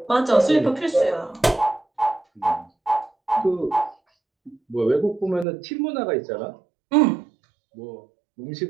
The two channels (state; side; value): drops out; left; at 5.5 s